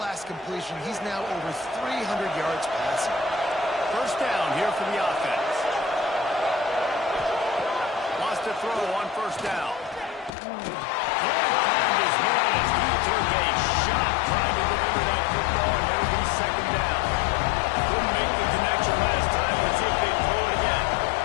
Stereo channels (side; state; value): right; drops out; at 10.3 s